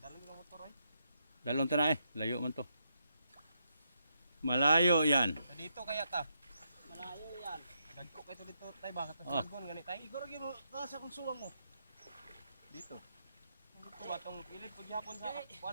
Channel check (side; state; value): both; inverted; correlation -0.80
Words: ko motor ay. Dalon ta na eh. Layo man to. Malayo yan. Dito kaya ta. Malayo yan. Dagko kay to dito tay ba katong sagon gani tay. Igor gyud mo sa kung suwang mo. Dito. Dito ba tong pilit pag yapon sa